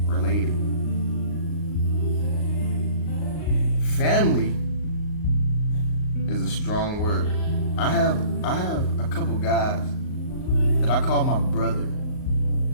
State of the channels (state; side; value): late; right; 38 ms